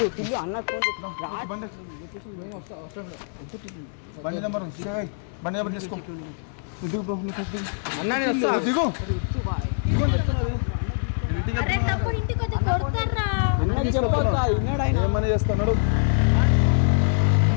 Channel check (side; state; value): right; silent; 62 dB below the other